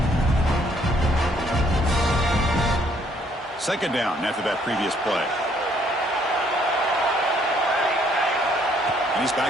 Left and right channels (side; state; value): both; normal; correlation 0.66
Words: Second down after that previous play. And he's